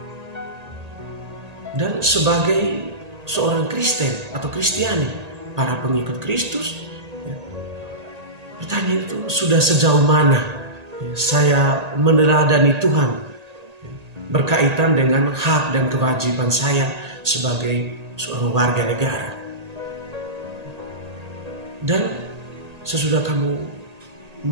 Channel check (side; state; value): left; late; 1.8 ms